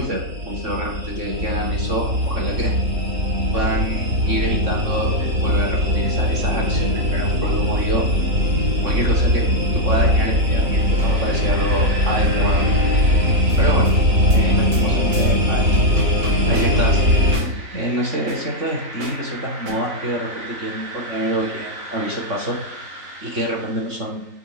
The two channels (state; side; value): late; left; 3.6 ms